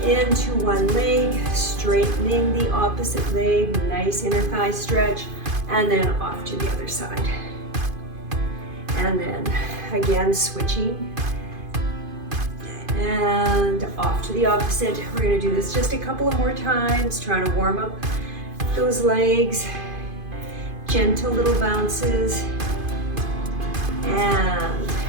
into one leg, straightening the opposite leg, nice inner thigh stretch, and then off to the other side. And then again, switching. And off to the opposite. We're gonna do this just a couple of more times, trying to warm up those legs. Gentle little bounces. And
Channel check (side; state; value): left; late; 2.5 ms